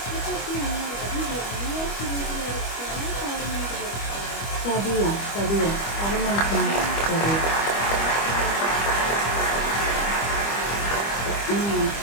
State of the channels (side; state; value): right; late; 25 ms